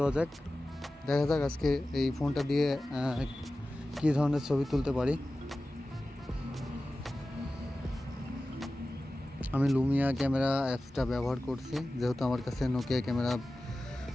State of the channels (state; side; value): normal; both; correlation 0.95